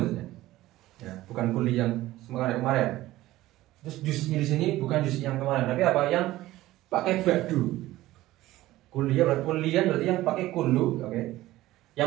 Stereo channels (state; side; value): quieter; left; 16.4 dB